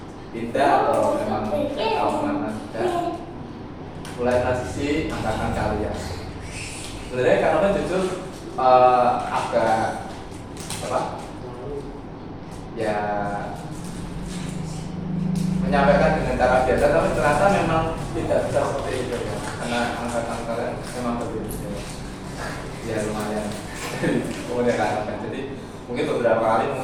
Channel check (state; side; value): identical; both; correlation 1.00